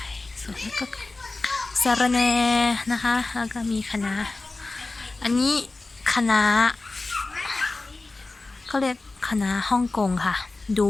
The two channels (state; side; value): quieter; right; 3.3 dB